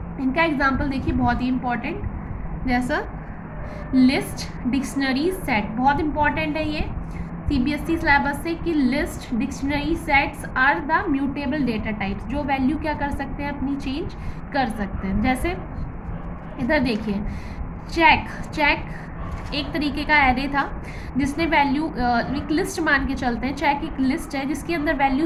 इनका एग्जाम्पल देखिए, बहुत ही इंपॉर्टेंट, जैसा लिस्ट, डिक्शनरी, सेट। बहुत इंपॉर्टेंट है ये सीबीएसई सिलेबस से कि list, dictionary, sets are the mutable data types, जो वैल्यू क्या कर सकते हैं? अपनी चेंज कर सकते हैं। जैसे इधर देखिए, चेक एक तरीके का एरे था जिसने वैल्यू, एक लिस्ट मान के चलते हैं, चेक एक लिस्ट है जिसके अंदर वैल्यू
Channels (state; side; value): identical; both; correlation 1.00